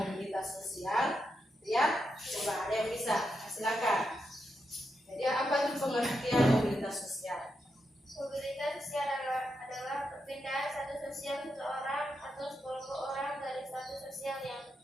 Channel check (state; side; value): normal; both; correlation 0.84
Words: mobilitas sosial. Ya, coba ada yang bisa, silakan. Jadi apa itu pengertian mobilitas sosial? Mobilitas sosial adalah perpindahan status sosial seseorang atau sekelompok orang dari status sosial yang